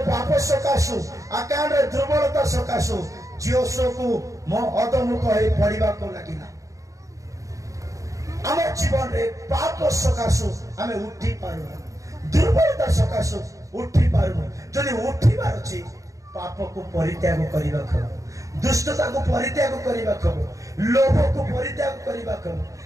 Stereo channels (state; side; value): late; left; 0.16 ms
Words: ପାପ ସକାଶୁ, ଆକାଣ୍ଡର ଦୁର୍ବଳତା ସକାଶୁ ଯୋଶୁଆକୁ ମୋ ଅଧମୁଖ ହେଇ ପଡିବାକୁ ଲାଗିଲା। ଆମ ଜୀବନରେ ପାପ ସକାଶୁ ଆମେ ଉଠି ପାରୁନୁ, ଦୁର୍ବଳତା ସକାଶୁ ଉଠି ପାରୁନୁ। ଯଦି ଉଠିବାର ଅଛି, ପାପକୁ ପରିତ୍ୟାଗ କରିବାକୁ ହେବ, ଦୁଷ୍ଟତାକୁ ପରିତ୍ୟାଗ କରିବାକୁ ହେବ, ଲୋଭକୁ ପରିତ୍ୟାଗ କରିବାକୁ ହେବ।